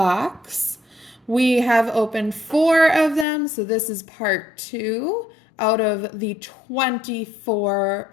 We have opened 4 of them, so this is part 2 out of the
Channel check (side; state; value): right; drops out; at 3.2 s